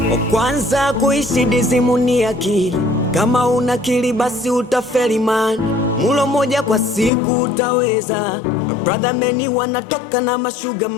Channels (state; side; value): drops out; right; at 7.1 s